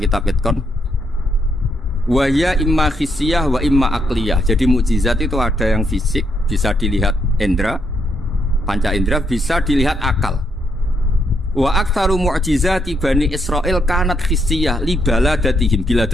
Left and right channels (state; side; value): normal; both; correlation 0.77